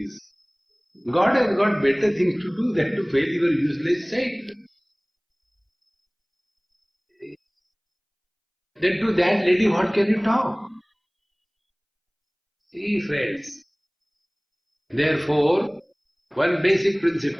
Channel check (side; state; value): both; identical; correlation 1.00